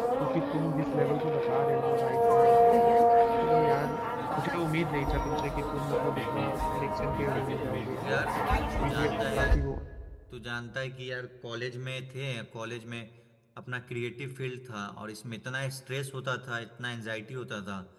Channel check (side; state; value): both; identical; correlation 1.00